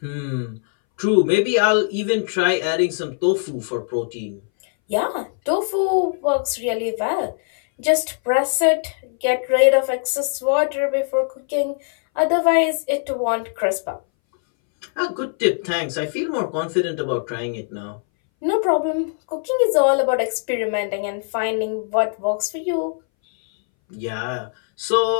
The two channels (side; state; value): right; silent; 62 dB below the other